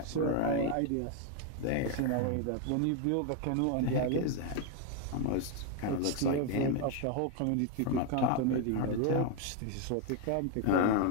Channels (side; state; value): both; different; correlation 0.01